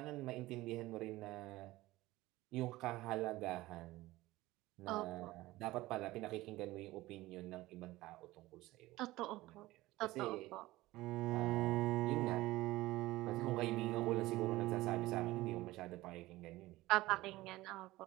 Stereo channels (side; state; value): left; quieter; 18.2 dB